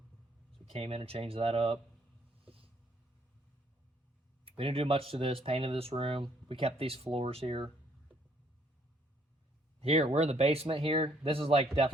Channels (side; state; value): both; normal; correlation 0.66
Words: we came in and changed that up. We didn't do much to this. Painted this room. We kept these floors here. Here, we're in the basement here. This is like